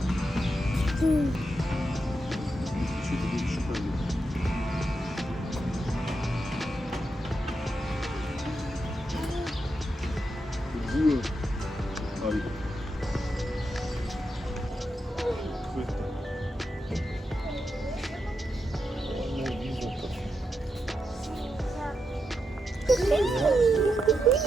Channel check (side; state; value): both; normal; correlation 0.85